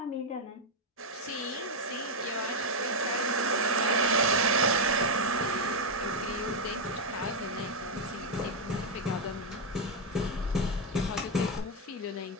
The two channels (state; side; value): normal; both; correlation 0.01